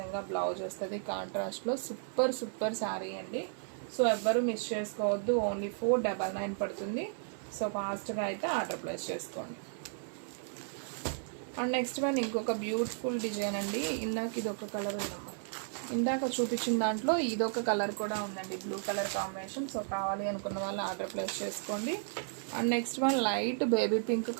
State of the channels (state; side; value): silent; left; 55 dB below the other